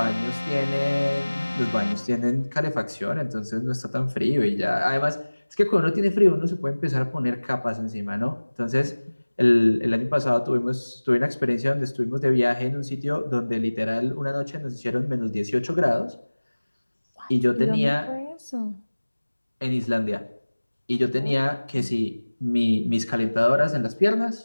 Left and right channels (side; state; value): both; inverted; correlation -1.00